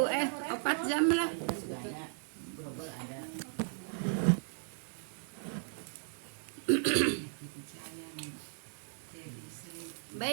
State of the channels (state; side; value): silent; left; digital silence